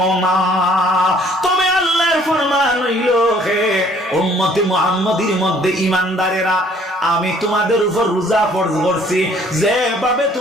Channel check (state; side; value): normal; both; correlation 0.59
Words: না। তবে আল্লাহর ফরমান হইল, হে উম্মতে মুহাম্মাদীর মধ্যে ঈমানদারেরা আমি তোমাদের উপর রোজা ফরজ করছি যেভাবে